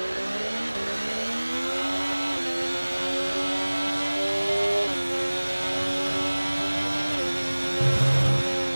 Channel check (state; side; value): inverted; both; correlation -1.00